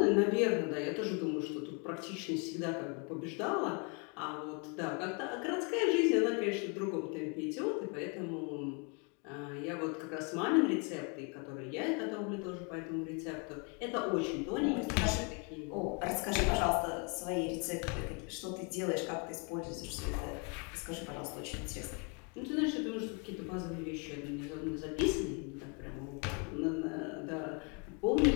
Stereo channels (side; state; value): right; quieter; 35.0 dB